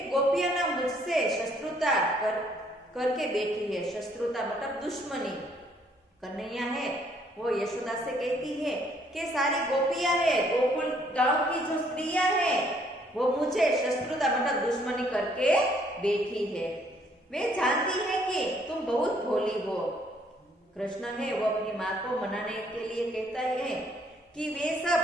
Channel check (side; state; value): both; normal; correlation 0.65